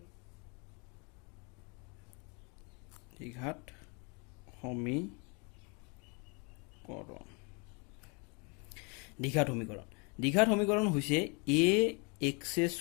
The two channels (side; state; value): right; quieter; 32.6 dB